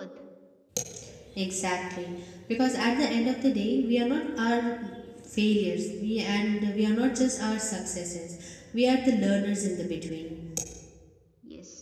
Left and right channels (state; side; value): identical; both; correlation 1.00